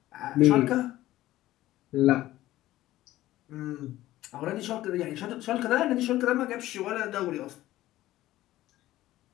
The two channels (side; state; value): right; quieter; 15.4 dB